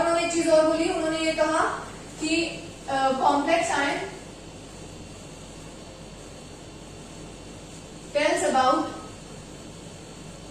एक चीज और बोली, उन्होंने ये कहा कि complex ion tells about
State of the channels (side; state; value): both; identical; correlation 1.00